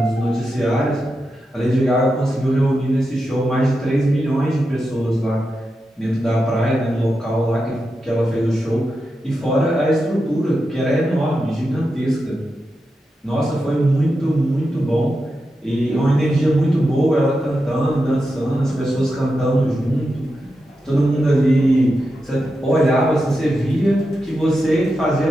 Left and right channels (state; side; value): normal; both; correlation 0.88